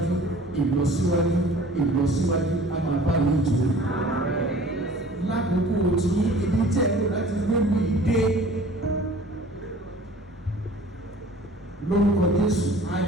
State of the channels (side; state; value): both; normal; correlation 0.47